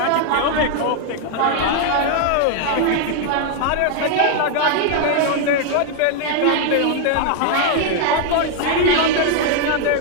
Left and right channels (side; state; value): both; different; correlation 0.00